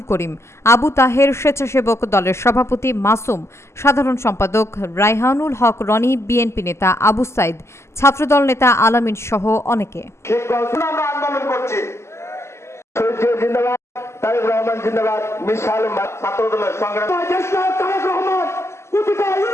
করিম, আবু তাহের, স্বেচ্ছাসেবক দলের সভাপতি মাসুম, সাধারণ সম্পাদক রায়হানুল হক রনি, বিএনপি নেতা আবু সাইদ, ছাত্রদল নেতা আলামিন সহ অনেকে।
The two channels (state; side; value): late; right; 0.13 ms